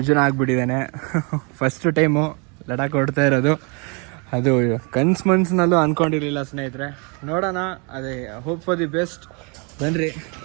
ಆಗಿಬಿಟ್ಟಿದ್ದಾನೆ. ಫಸ್ಟ್ ಟೈಮು ಲಡಾಖ್ ಹೊಡ್ತಾ ಇರೋದು. ಅದು ಮನ್ಸಿನಲ್ಲೂ ಅಂದ್ಕೊಂಡಿರಲಿಲ್ಲ ಸ್ನೇಹಿತರೆ. ನೋಡೋಣ, ಅದೇ ಹೋಪ್ ಫಾರ್ ದಿ ಬೆಸ್ಟ್. ಬನ್ನಿರಿ.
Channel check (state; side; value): quieter; left; 33.4 dB